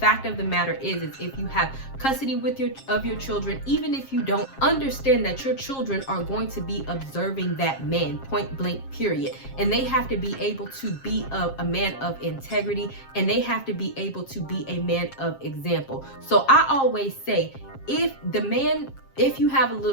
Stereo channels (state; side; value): late; right; 7.5 ms